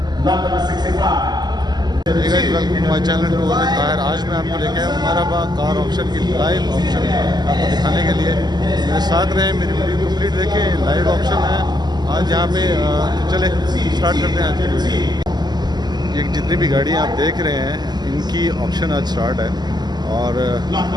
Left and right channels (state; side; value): late; left; 0.20 ms